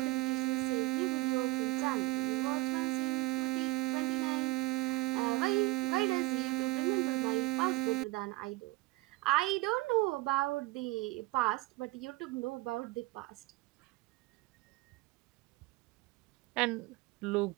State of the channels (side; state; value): left; quieter; 21.1 dB